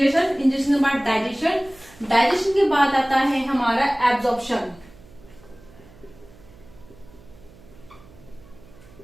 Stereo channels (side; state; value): right; noise; hum, 24 dB below the sound